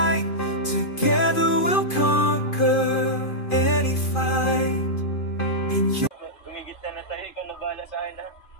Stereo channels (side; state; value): right; late; 2.5 ms